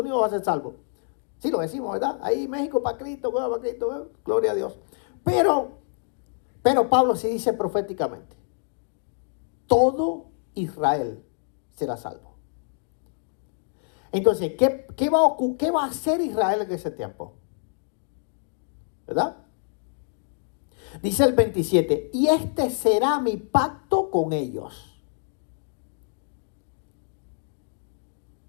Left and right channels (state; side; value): silent; right; 61 dB below the other